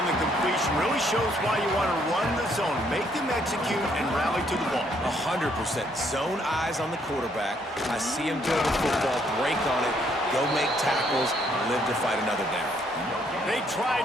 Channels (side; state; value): both; normal; correlation 0.69